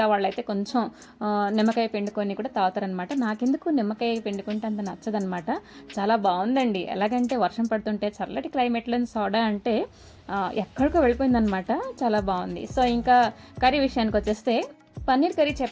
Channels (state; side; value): identical; both; correlation 1.00